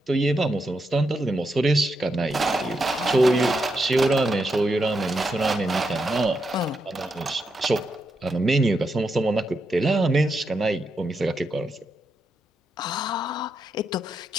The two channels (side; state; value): both; normal; correlation 0.83